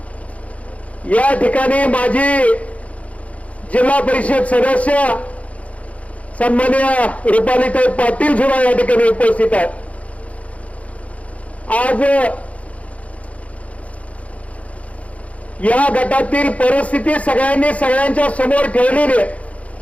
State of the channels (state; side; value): late; right; 0.065 ms